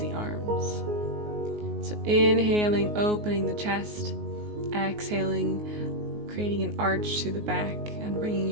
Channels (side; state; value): left; late; 19 ms